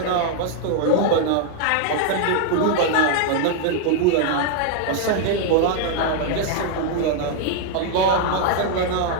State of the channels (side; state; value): both; different; correlation 0.00